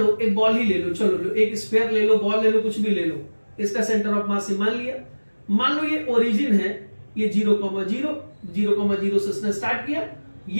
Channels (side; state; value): both; inverted; correlation -1.00